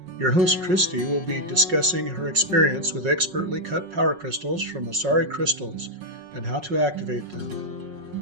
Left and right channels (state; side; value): late; left; 5.5 ms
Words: Your host, Christy, will be discussing her experience with expertly cut power crystals from Asari Crystals and how to activate